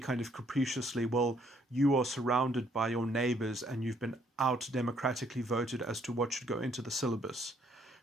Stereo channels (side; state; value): both; normal; correlation 0.67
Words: of capriciously, well, you are surrounded by your neighbors and you've been out democratically voted as to what should go into the syllabus.